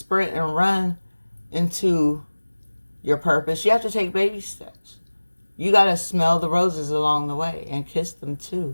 and run into your purpose. You have to take baby steps. You got to smell the roses along the way and kiss them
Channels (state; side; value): inverted; both; correlation -1.00